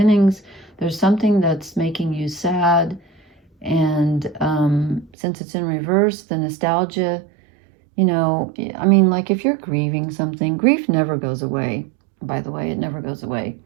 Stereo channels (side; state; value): left; drops out; at 5.1 s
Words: There's something that's making you sad. And since it's in reverse, the nostalgia, you know, I mean, like if you're grieving something, grief never goes away. By the way, it never goes away.